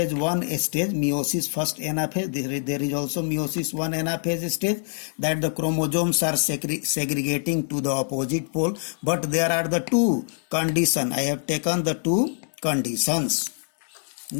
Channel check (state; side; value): silent; right; 60 dB below the other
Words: 1 stage, meiosis first anaphase. There is also meiosis 1 anaphase stage, that the chromosomes are segregating to the opposite pole. But there are the 2 conditions. I have taken the 2 conditions.